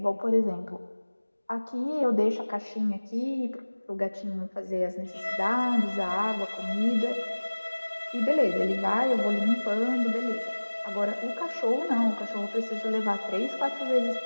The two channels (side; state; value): both; inverted; correlation -1.00